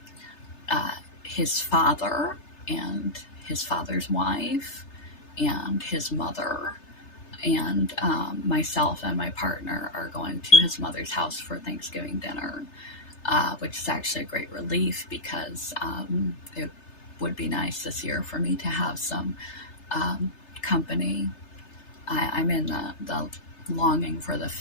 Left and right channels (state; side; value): late; right; 3.3 ms